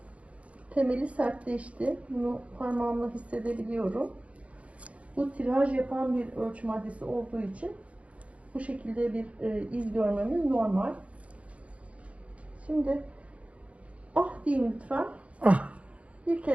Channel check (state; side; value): late; left; 0.064 ms